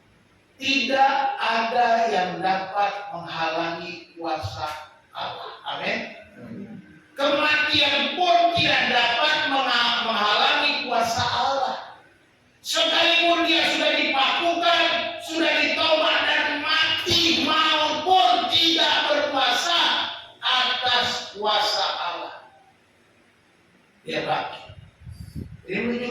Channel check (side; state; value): both; identical; correlation 1.00